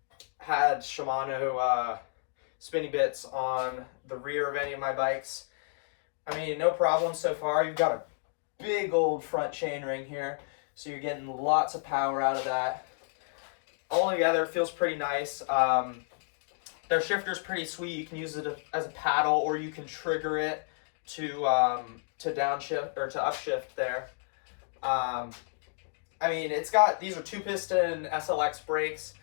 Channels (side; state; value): right; silent; digital silence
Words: had Shimano spinny bits on the rear of any of my bikes. I mean, no problem so far. You've got a big old front chainring here, so you're getting lots of power out of that. Altogether, it feels pretty nice. Their shifter's pretty sweet. You can use it as a paddle, or you can trigger it to downshift or to upshift there. I mean, these are 2-piston SLX brakes